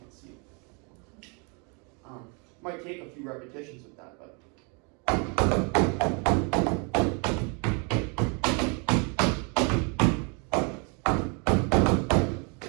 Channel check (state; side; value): quieter; left; 34.4 dB